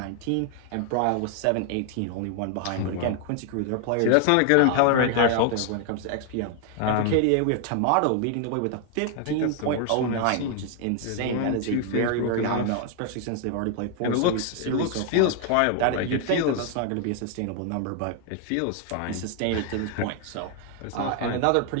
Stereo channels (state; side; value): different; both; correlation 0.00